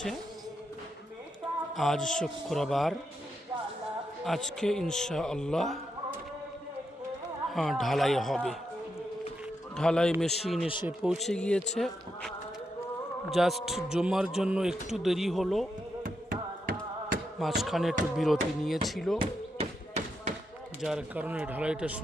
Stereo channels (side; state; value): both; normal; correlation 0.83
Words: আজ শুক্রবার, আজকে ইনশাআল্লাহ ঢালাই হবে। ঢালাই মেশিন এসে পৌঁছে গিয়েছে। জাস্ট জমার জন্য একটু দেরি হলো, মাঝখানে একটু বিরতি নিয়েছিল, যার কারণে ঢালাইটা